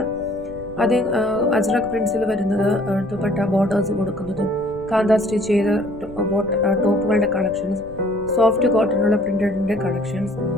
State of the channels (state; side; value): noise; left; rumble, 18 dB below the sound